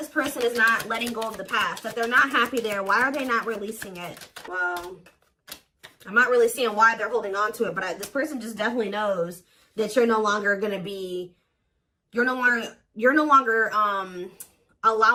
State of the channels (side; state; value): both; identical; correlation 1.00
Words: person is not letting go of the past? That they're not happy there. Why are they not releasing it? Well, I'm not really seeing why they're holding on to it. But this person just definitely knows that you're no longer going to be... You're no longer